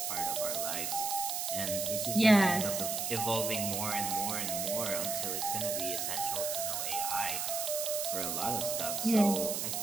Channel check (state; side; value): noise; right; hiss, 1 dB below the sound